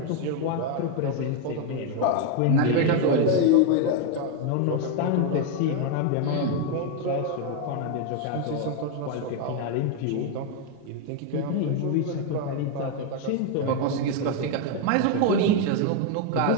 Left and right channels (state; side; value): different; both; correlation 0.01